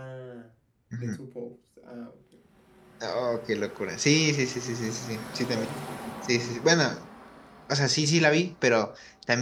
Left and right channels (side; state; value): both; identical; correlation 1.00